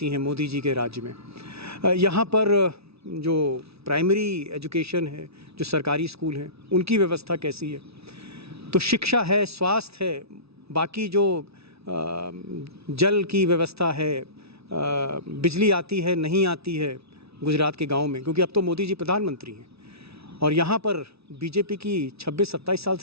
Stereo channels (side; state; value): left; late; 0.78 ms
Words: हैं मोदी जी के राज्य में। यहाँ पर जो प्राइमरी एजुकेशन है, जो सरकारी स्कूल हैं, उनकी व्यवस्था कैसी है। तो शिक्षा है, स्वास्थ्य है, बाकी जो जल की व्यवस्था है, बिजली आती है नहीं आती है गुजरात के गाँव में, क्योंकि अब तो मोदी जी प्रधानमंत्री हैं और यहाँ पर बीजेपी की 26-27 साल